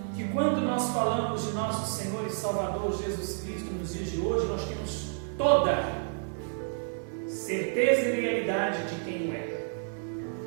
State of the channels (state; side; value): silent; left; digital silence